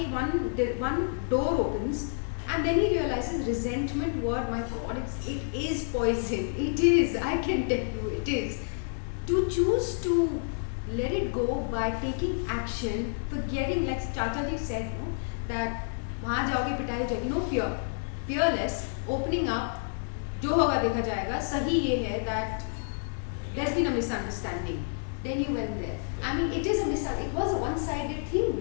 one door opens. And then he realizes resentment, what, my God, it is poison. It is, I can tell you, it is. To choose to let it go by taking action, forgetting, like Chacha ji said, that वहाँ जाओगे पिटाई हो जाएगी, no fear, fearless, opening up, जो होगा देखा जाएगा. सही ये है that there's been a misunderstanding. Then you went there. I mean, it is a it was a one-sided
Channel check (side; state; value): right; silent; digital silence